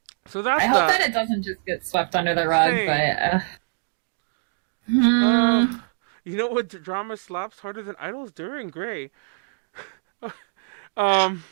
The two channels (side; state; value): left; silent; digital silence